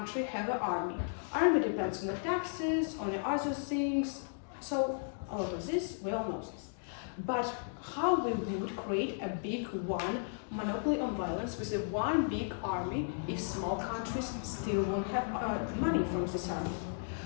have an army. Army depends on the taxes, on the other things, so a lot of this, we all know this. But how we would create a big one monopoly on violence with a one big army if small countries still won't have money from this army?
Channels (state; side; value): silent; right; digital silence